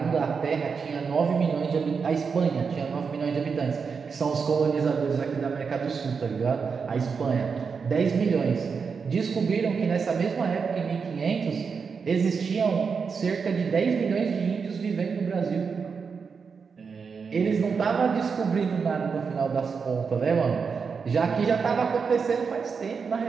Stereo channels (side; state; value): left; quieter; 5.6 dB